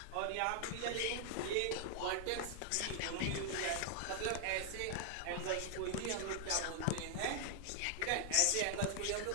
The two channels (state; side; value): different; both; correlation 0.00